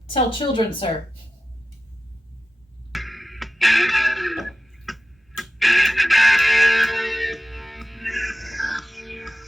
tell children, sir.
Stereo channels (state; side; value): normal; both; correlation 0.94